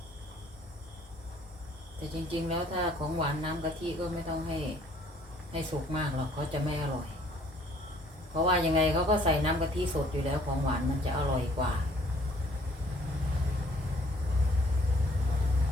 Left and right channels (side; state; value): both; normal; correlation 0.60